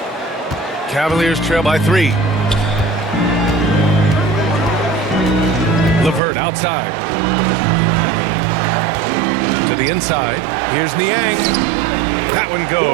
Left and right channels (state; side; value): drops out; left; at 6.2 s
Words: Cavaliers trail by 3. LeVert outside. To the inside. Here's Niang. That one